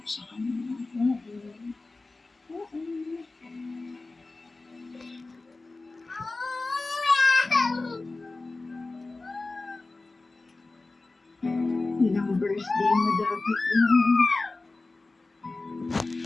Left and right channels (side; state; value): right; quieter; 3.4 dB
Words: sa kanila. Oo. Oo. Ilang birthday mo dapat